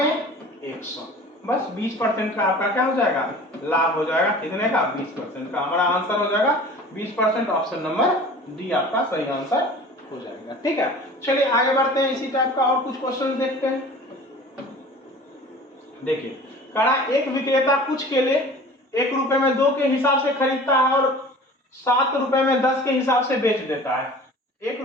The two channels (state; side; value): normal; both; correlation 0.43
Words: 100, बस 20% का आपका क्या हो जाएगा? लाभ हो जाएगा। कितने का? 20% का। हमारा आंसर हो जाएगा 20%। ऑप्शन नंबर डी आपका सही आंसर हो जाएगा, ठीक है? चलिए आगे बढ़ते हैं, इसी टाइप का और कुछ क्वेश्चन देखते हैं। देखिए कहा एक विक्रेता कुछ केले 1 रुपए में 2 के हिसाब से खरीदता है और 7 रुपए में 10 के हिसाब से बेच देता है। 1